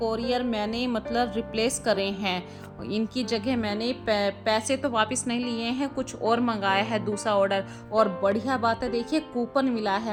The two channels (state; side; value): identical; both; correlation 1.00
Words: मैंने मतलब रिप्लेस करे हैं। इनकी जगह मैंने पैसे तो वापस नहीं लिए हैं, कुछ और मंगाया है दूसरा ऑर्डर। और बढ़िया बात है, देखिए कूपन मिला